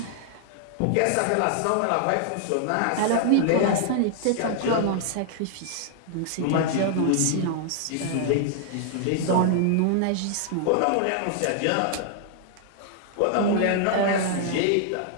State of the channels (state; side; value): different; both; correlation 0.00